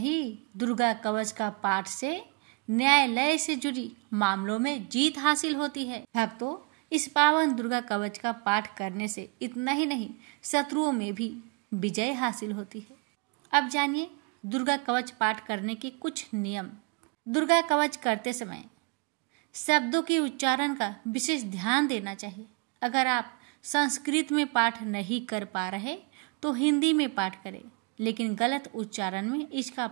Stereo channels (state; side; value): quieter; left; 31.7 dB